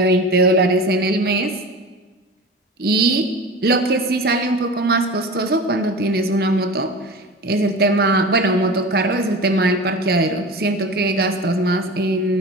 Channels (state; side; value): normal; both; correlation 0.33